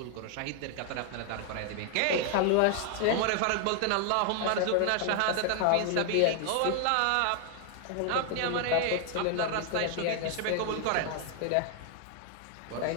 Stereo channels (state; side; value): different; both; correlation 0.00